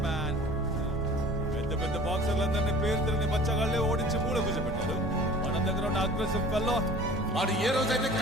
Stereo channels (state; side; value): normal; both; correlation 0.46